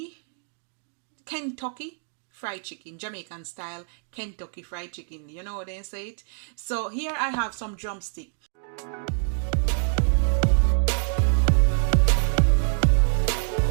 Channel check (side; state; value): left; silent; digital silence